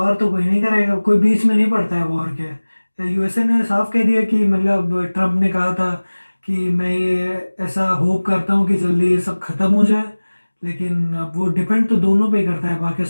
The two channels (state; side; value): inverted; both; correlation -1.00